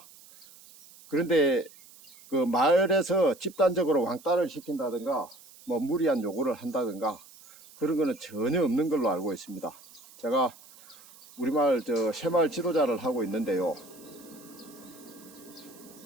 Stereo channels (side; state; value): right; noise; hiss, 22 dB below the sound